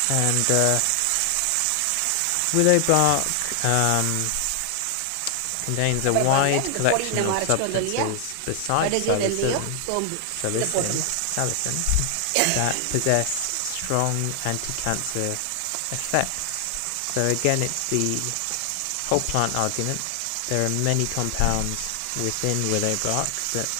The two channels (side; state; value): both; different; correlation 0.00